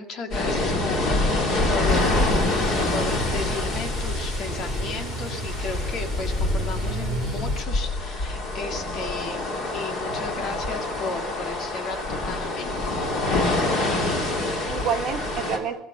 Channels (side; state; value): both; normal; correlation 0.50